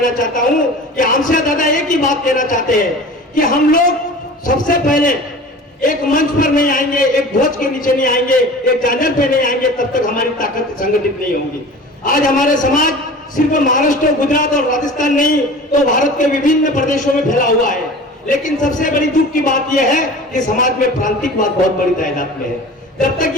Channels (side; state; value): both; normal; correlation 0.39